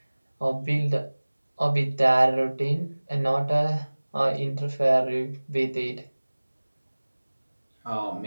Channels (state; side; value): inverted; both; correlation -1.00